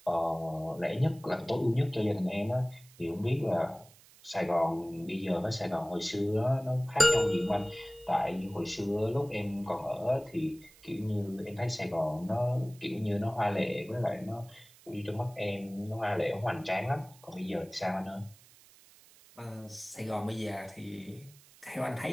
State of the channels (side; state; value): right; noise; hiss, 24 dB below the sound